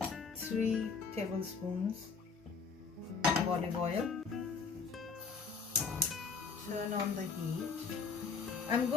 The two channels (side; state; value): right; quieter; 5.2 dB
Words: 3 tablespoons of olive oil. Turn on the heat. I'm